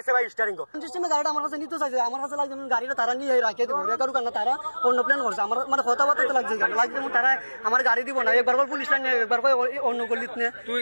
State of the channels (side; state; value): both; inverted; correlation -1.00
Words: ভাই স্টিয়ারিং কো সিস্টেমে গাড়িটা আমার কাছে নিতে চাইছে। আমার কাছে লাগছে গাড়িটা তারা নিয়ে রাখিয়ে দেবো, রেকারু কারণ তারা অন্য প্ল্যান করছে। আমার মানে কথাবার্তা লাগছে লাগছে তারা আমার গাড়ি দিব না, একবার করে পুলিশ লাইন একবার করে অন্য গলিত নিয়ে